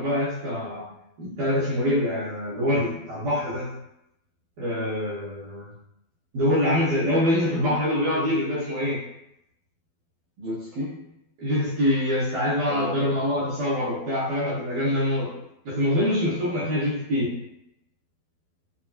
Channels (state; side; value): late; left; 12 ms